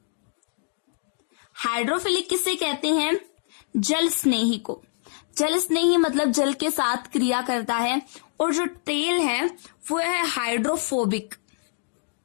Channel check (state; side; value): silent; right; digital silence